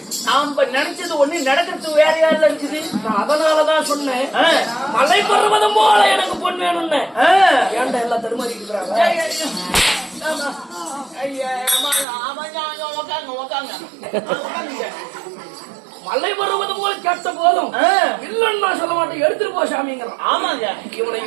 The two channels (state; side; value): drops out; left; at 12.1 s